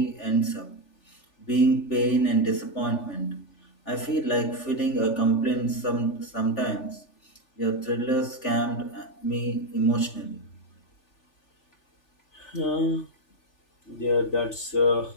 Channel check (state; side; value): late; right; 3.4 ms